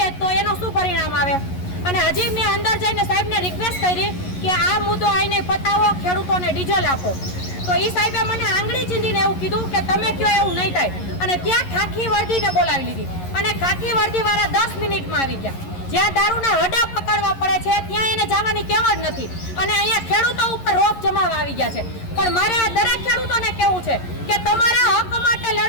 તો એનું શું પરિણામ આવે? અને હજી મેં અંદર જઈને સાહેબને રિક્વેસ્ટ કરી કે આ મુદ્દો આઈને પતાવો, ખેડૂતોને ડીઝલ આપો। તો એ સાહેબે મને આંગળી ચીંધીને એવું કીધું કે તમે કયો એવું નહીં થાય અને ત્યાં ખાખી વર્દીને બોલાવી લીધી અને ખાખી વર્દીવાળા 10 મિનિટમાં આવી ગયા। જ્યાં દારૂના હડા પકડવા પડે છે ત્યાં એને જવાની ટેવ જ નથી અને અહીંયા ખેડૂતો ઉપર રોપ જમાવા આવી ગયા છે। પણ મારે આ દરેક ખેડૂતોને કહેવું છે કે તમારા હક માટે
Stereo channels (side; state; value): right; late; 11 ms